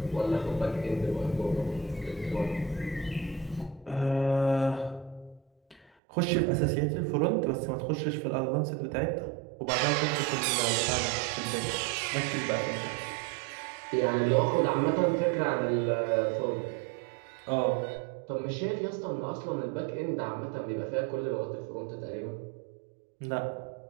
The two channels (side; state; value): left; drops out; at 5.9 s